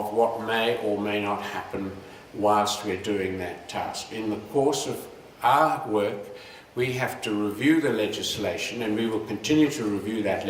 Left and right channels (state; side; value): identical; both; correlation 1.00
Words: what may or may not happen whilst we're doing that task. In the course of our work, we have to review the legislation, and we will continue to review that